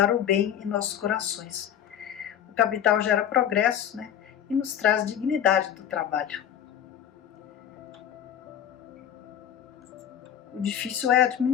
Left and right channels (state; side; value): quieter; right; 10.0 dB